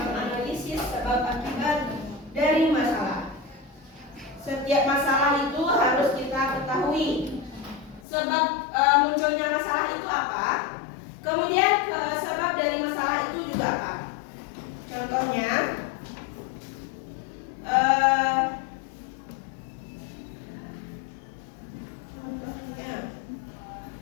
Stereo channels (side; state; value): right; drops out; at 8.0 s